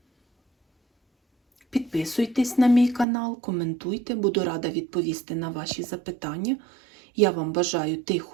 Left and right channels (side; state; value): left; drops out; at 3.1 s